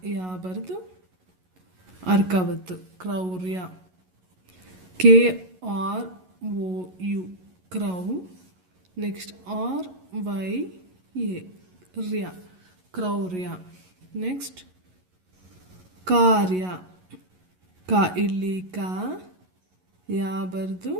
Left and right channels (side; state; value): left; late; 11 ms